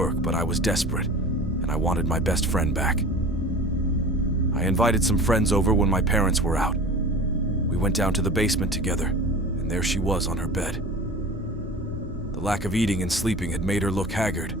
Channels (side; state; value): both; normal; correlation 0.38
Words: but I was desperate, and I wanted my best friend back. I invited some friends over when my parents were out. We went down to the basement together, and there she was on her bed. The lack of eating and sleeping had made her look haggard.